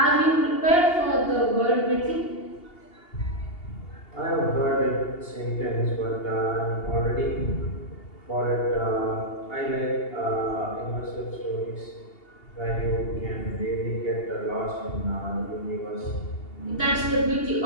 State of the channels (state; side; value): late; right; 2.8 ms